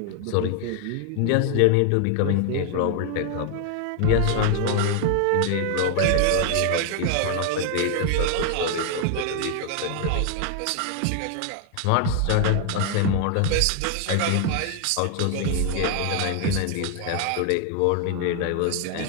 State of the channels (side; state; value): both; different; correlation 0.00